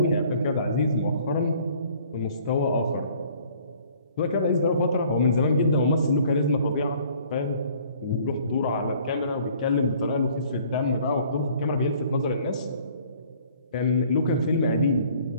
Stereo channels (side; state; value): both; inverted; correlation -0.56